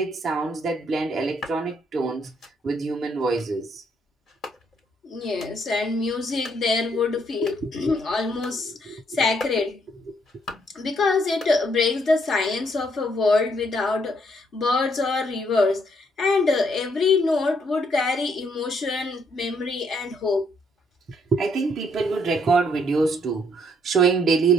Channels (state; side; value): normal; both; correlation 0.70